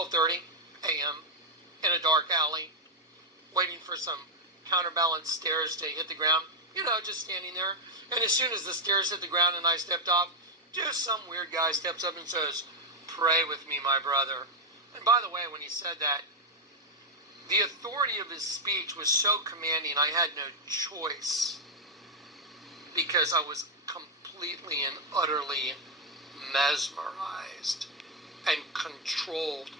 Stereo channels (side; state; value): both; normal; correlation 0.01